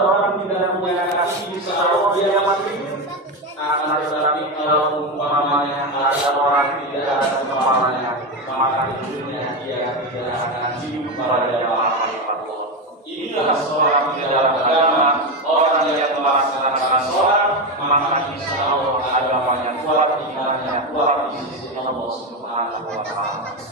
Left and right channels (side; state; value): both; normal; correlation 0.14